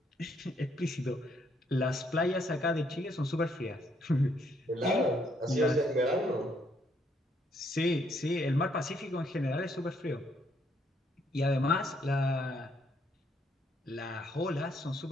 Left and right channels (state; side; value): normal; both; correlation 0.71